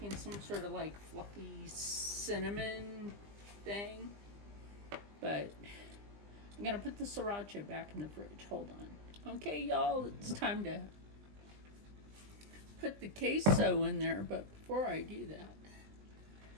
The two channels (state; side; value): late; left; 20 ms